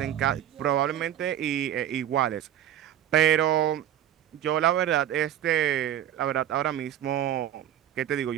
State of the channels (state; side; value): quieter; left; 11.2 dB